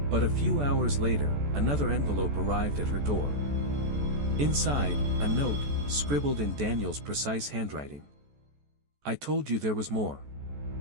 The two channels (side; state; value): left; late; 14 ms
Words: But a few hours later, another envelope arrived at her door. Inside, a note, scribbled in Daniel's precise handwriting. I told you there was more.